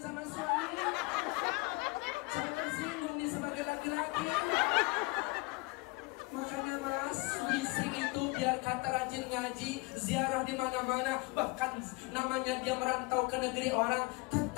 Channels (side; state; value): right; quieter; 25.4 dB